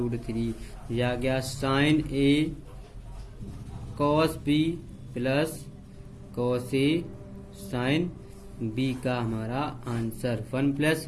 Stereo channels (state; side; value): identical; both; correlation 1.00